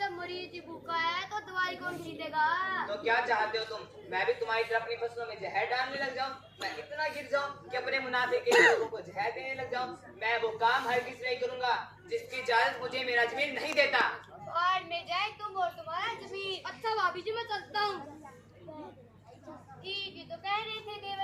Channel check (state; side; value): identical; both; correlation 1.00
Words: मरीज भूखा है तो दवाई कौन खरीदेगा? तो क्या चाहते हो तुम? मैं भी तुम्हारी तरह अपनी फसलों में जहर डालने लग जाऊं? मैं इतना गिर जाऊं कि अपने मुनाफे के लिए लोगों को जहर देने लग जाऊं? मैं वो काम हरगिज नहीं करूंगा जिसकी इजाजत मुझे मेरा जमीन नहीं देता। बाढ़ में जाए तुम और तुम्हारा जमीन। अच्छा भाभी जी मैं चलता हूँ। ठीक ही तो कह रहे थे